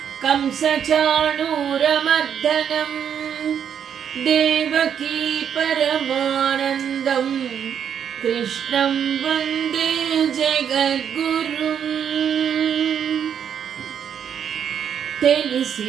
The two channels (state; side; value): quieter; left; 8.3 dB